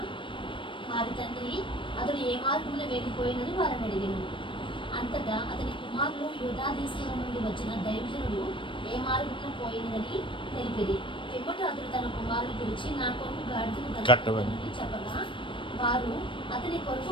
వారి తండ్రి అతడు ఏ మార్గమున వెళ్ళిపోయినని వారిని అడిగాను. అంతటా అతని కుమారులు యూదా దేశంలో నుండి వచ్చిన దైవజనుడు ఏ మార్గమున పోయినదని తెలిపిరి. పిమ్మట అతడు తన కుమారులు పిలిచి నా కొరకు గాడిదకు కట్టమని చెప్పగా వారు అతని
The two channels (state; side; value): late; right; 0.25 ms